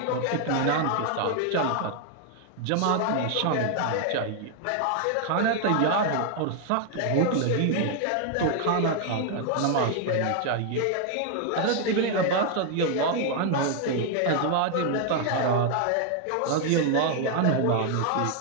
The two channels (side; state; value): both; different; correlation 0.00